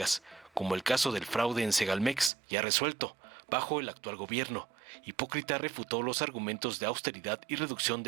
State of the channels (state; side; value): drops out; left; at 2.3 s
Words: como el caso del fraude en Segalmex, ya resuelto, bajo el actual gobierno. Hipócrita refutó los argumentos de austeridad y reducción